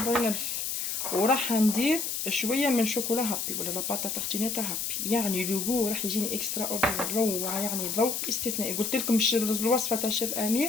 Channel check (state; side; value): noise; left; hiss, 2 dB below the sound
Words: وراح ندير شويه من شوكولا هابي ولا لاباطا تارتينيتا هابي، يعني لوغو راح يجيني اكسترا اوردينير، روعه يعني ذوق استثنائي. قلت لكم الوصفه تاع الشيف